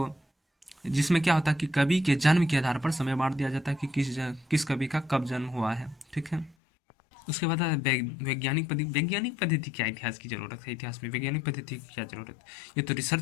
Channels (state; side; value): drops out; right; at 6.6 s